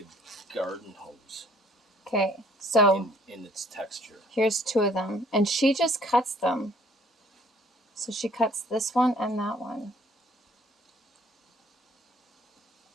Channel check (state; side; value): normal; both; correlation 0.59